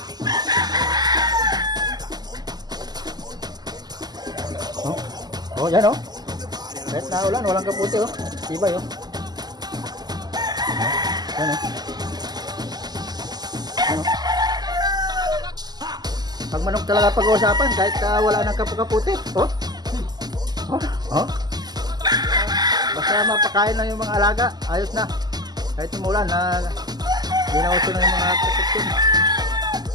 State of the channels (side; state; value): left; late; 0.20 ms